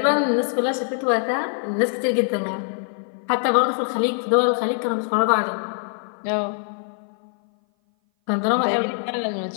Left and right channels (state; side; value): silent; right; 58 dB below the other